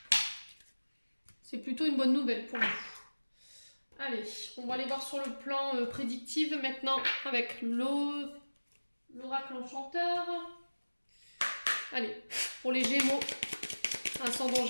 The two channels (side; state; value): both; inverted; correlation -1.00